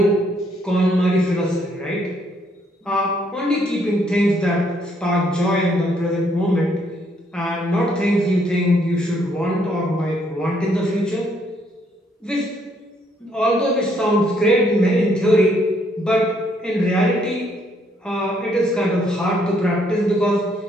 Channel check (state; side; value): normal; both; correlation 0.70